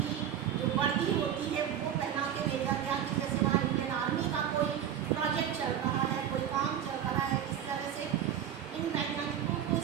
जो वर्दी होती है वो पहना के भेजा गया कि जैसे वहाँ इंडियन आर्मी का कोई प्रोजेक्ट चल रहा है, कोई काम चल रहा है। इस तरह से इन वैज्ञानिकों को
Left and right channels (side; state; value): left; quieter; 9.7 dB